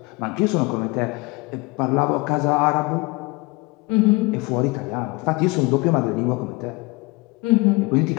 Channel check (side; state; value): right; quieter; 25.4 dB